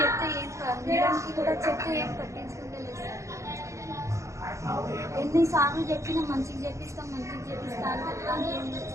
ఏం, మేడంకి కూడా చెప్తే ఏం పట్టించుకుంటలేదు సార్. ఎన్నిసార్లు చెప్పినా మంచిగా చెప్పిస్తా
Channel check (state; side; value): late; left; 0.15 ms